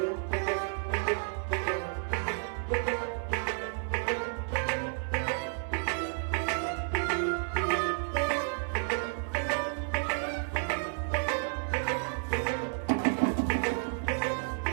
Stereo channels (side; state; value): left; silent; 57 dB below the other